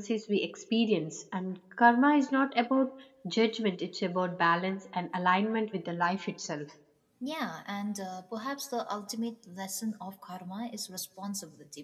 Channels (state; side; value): identical; both; correlation 1.00